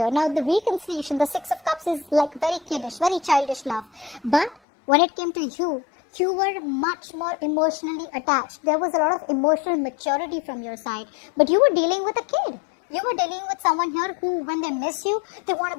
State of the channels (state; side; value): drops out; right; at 4.5 s